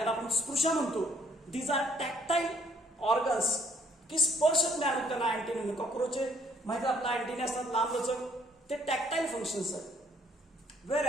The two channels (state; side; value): normal; both; correlation 0.63